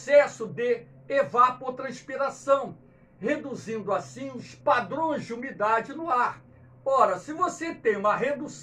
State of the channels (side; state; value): both; identical; correlation 1.00